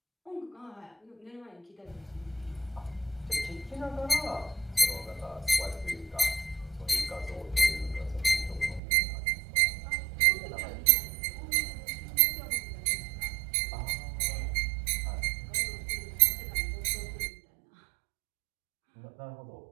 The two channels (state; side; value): drops out; left; at 8.8 s